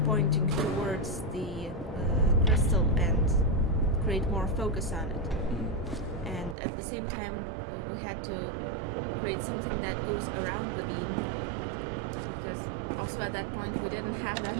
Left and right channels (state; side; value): drops out; left; at 6.6 s